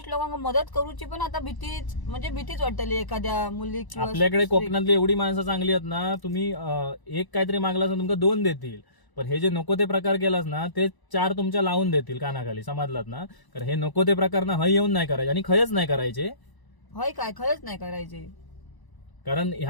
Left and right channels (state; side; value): late; right; 1.0 ms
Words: लोकांना मदत करूची पण आता भीतीच वाटली एखाद्या मुली. आपल्याकडे कोकणातली एवढी माणसं चांगली आहेत ना, तुम्ही एक काहीतरी मागलास ना तुमका 2 देतील. पण हे जे नको ते प्रकार केलास ना, ते 4 तुमच्या लावून देतील कानाखाली, समजलात ना. कारण हे नको ते प्रकार ना हय येऊन नाही करायचे आणि खयच नाही करायचे. खरंच नाही करायचे. कारण